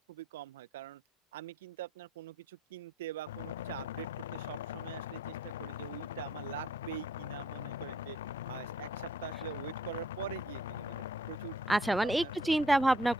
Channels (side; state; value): both; normal; correlation 0.62